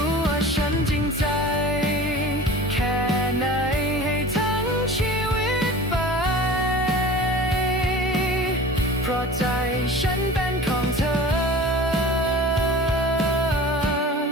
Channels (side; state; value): both; normal; correlation 0.39